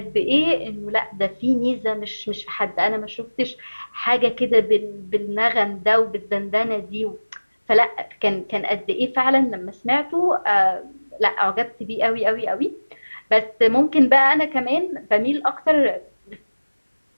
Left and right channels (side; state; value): both; inverted; correlation -1.00